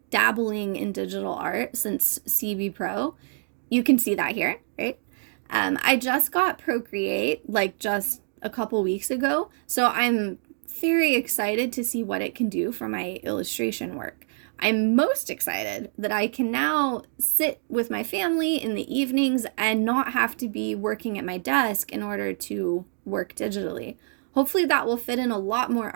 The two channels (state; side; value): silent; left; digital silence